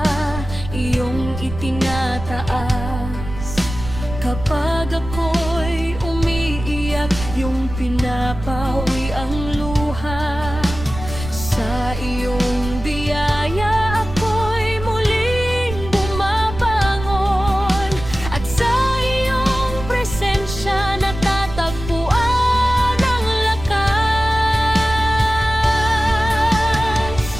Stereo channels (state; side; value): noise; right; rumble, 10 dB below the sound